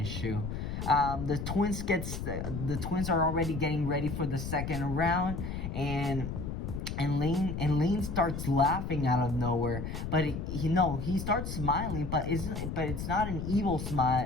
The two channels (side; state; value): left; noise; rumble, 5 dB below the sound